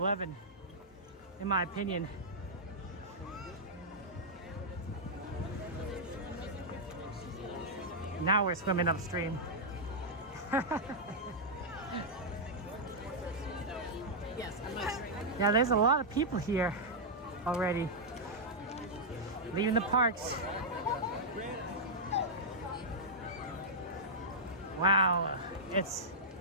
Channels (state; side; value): normal; both; correlation -0.08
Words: in my opinion. Now we're swimming upstream. Yeah, there's a lot of people here already. Leaving the parks. Wow, this